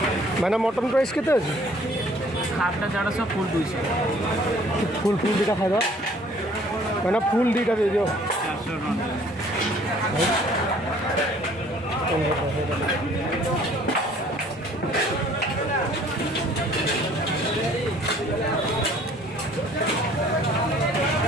मैंने मटन प्राइस केते अछि? हाफटा 150 फुल 200। फुल दुटा खाइबा मैंने फुल दुटा दे दियो।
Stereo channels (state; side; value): normal; both; correlation 0.56